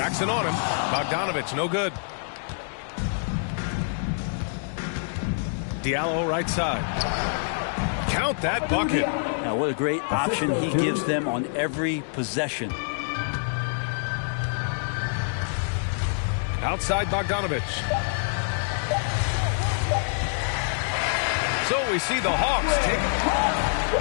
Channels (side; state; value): right; silent; digital silence